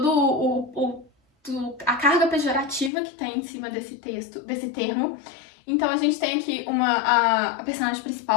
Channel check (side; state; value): right; drops out; at 2.9 s